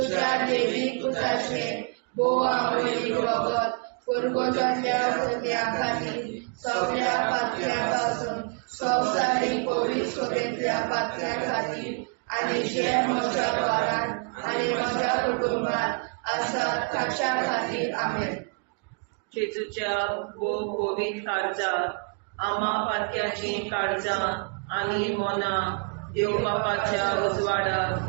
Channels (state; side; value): quieter; left; 38.9 dB